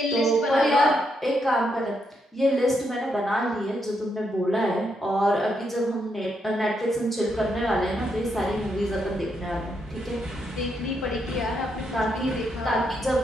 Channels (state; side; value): normal; both; correlation 0.79